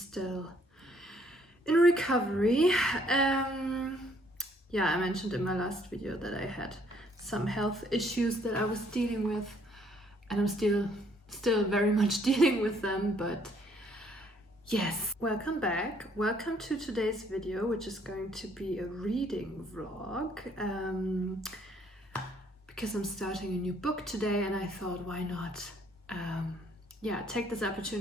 in recovery. Yeah, I mentioned in my last video that I had some health issues that I was dealing with, and I'm still very much dealing with them, but yes. Welcome back. Welcome to today's video, which is going to be a reading vlog, because I'm starting a new book today, and I thought, why not take this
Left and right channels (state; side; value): normal; both; correlation 0.65